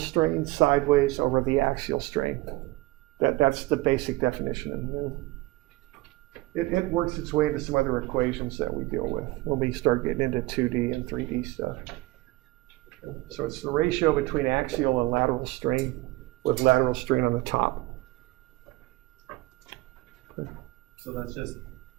sideways over the axial strain. That's the basic definition of nu. It works its way into some other equations that we deal with when we start getting into 2D and 3D stuff. So it's the ratio between axial and lateral strain, with lateral strain on the top. So that's just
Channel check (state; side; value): quieter; left; 19.5 dB